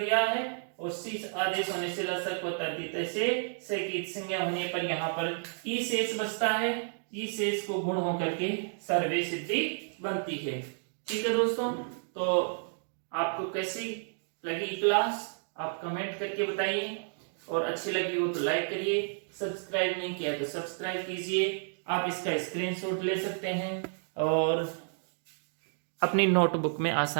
है, और सी आदेश होने से लसक व तद्धित से की संज्ञा होने पर यहाँ पर ई शेष बचता है। ई शेष को गुण होकर के सर्वे सिद्धि बनती है। ठीक है दोस्तों, तो आपको कैसी लगी क्लास आप कमेंट करके बताइए, और अच्छी लगी हो तो लाइक करिए, सब्सक्राइब नहीं किया तो सब्सक्राइब कीजिए। आप इसका स्क्रीनशॉट ले सकते हैं और अपनी नोटबुक में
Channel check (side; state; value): left; silent; digital silence